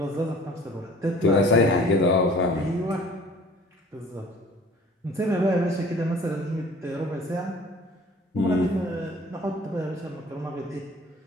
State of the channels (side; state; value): both; normal; correlation 0.49